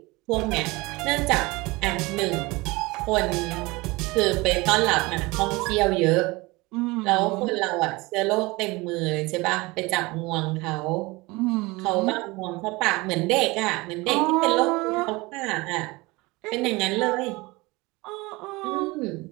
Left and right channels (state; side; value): quieter; left; 23.1 dB